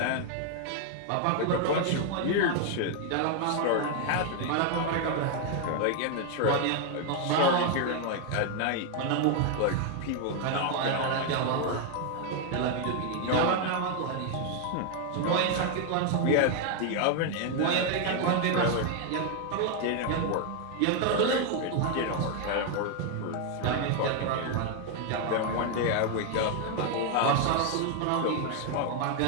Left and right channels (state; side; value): different; both; correlation 0.00